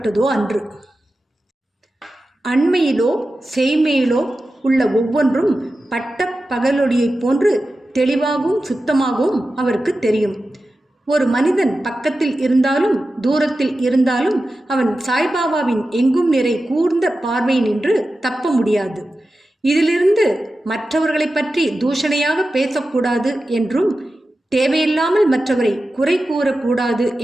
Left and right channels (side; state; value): both; normal; correlation 0.93